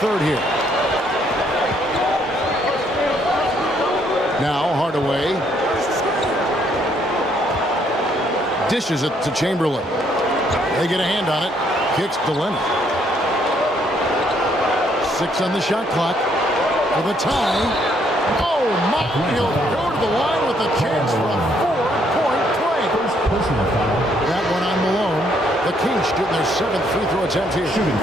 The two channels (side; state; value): both; normal; correlation 0.69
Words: here. Now Hardaway dishes it to Chamberlain. They get a hand on it. Kicks to Leonard. 6 on the shot clock for the tie. Oh, my! He'll go to the line with a chance for a 4-point play. That one on Malone. The Kings shooting their 7th free throw attempt here.